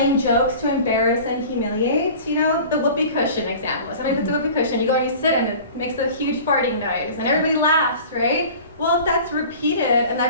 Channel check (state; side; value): inverted; both; correlation -0.41